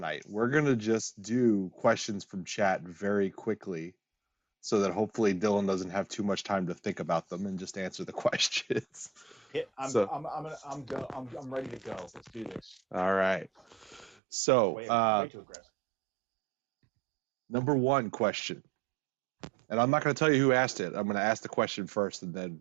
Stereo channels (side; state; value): left; drops out; at 14.2 s